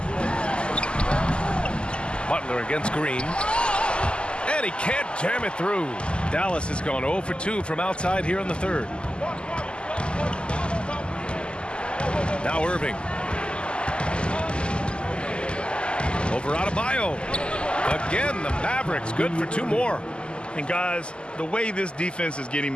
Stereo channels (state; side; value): late; right; 0.051 ms